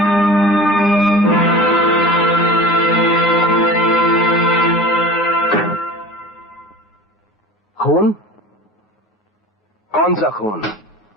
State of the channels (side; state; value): both; normal; correlation 0.37